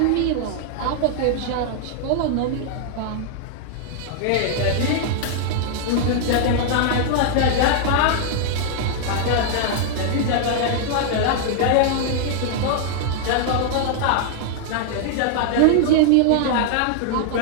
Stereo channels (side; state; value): both; different; correlation -0.01